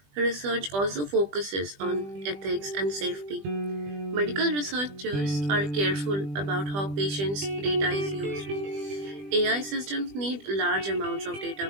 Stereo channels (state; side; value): late; left; 20 ms